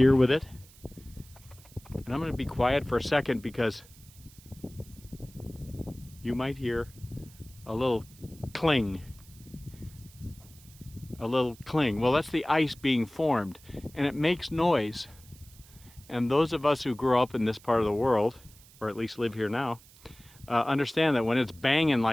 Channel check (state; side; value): noise; right; hiss, 24 dB below the sound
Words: with it. And I'm going to be quiet for a second because you might hear a little cling. A little cling. Well, that's the ice being formed, and it makes noise. And those of us who grew up in this part of the world, or at least live here now, understand that when it's banging